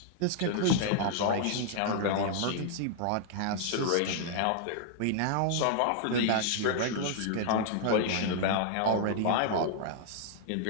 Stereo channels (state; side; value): different; both; correlation -0.01